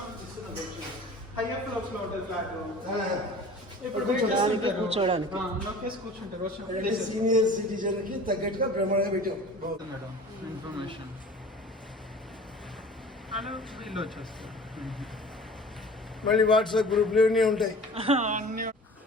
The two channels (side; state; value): both; normal; correlation 0.43